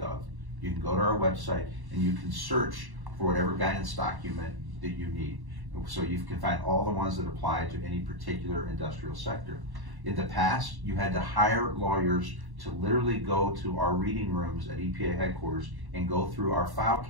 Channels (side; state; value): left; late; 1.1 ms